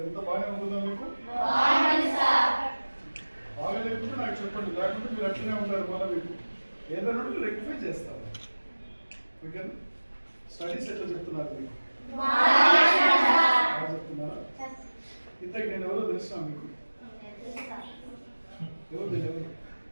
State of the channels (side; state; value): both; inverted; correlation -1.00